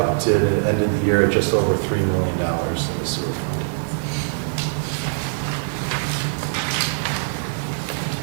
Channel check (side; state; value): left; silent; 61 dB below the other